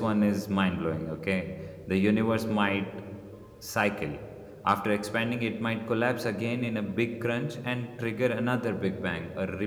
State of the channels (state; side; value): identical; both; correlation 1.00